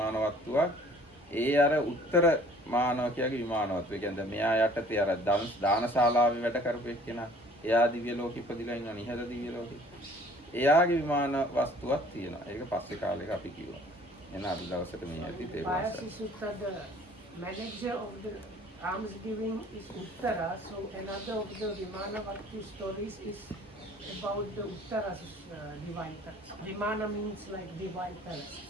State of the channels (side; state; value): both; normal; correlation 0.53